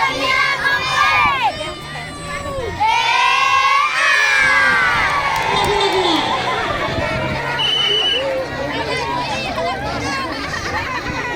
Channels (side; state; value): both; identical; correlation 1.00